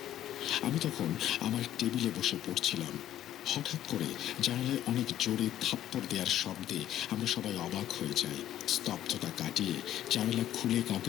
আমি তখন আমার টেবিলে বসে পড়ছিলাম। হঠাৎ করে জানালায় অনেক জোরে থাপ্পড় দেওয়ার শব্দে আমরা সবাই অবাক হয়ে যাই। স্তব্ধতা কাটিয়ে জানালা খুলে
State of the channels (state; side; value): quieter; right; 12.1 dB